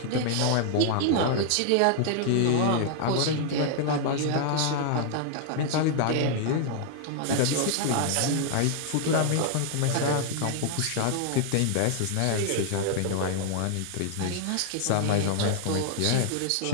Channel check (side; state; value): both; different; correlation 0.00